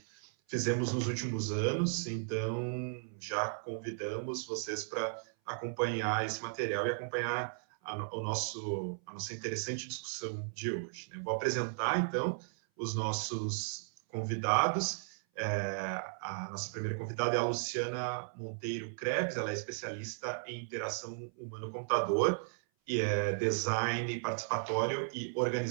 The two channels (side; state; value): left; silent; 54 dB below the other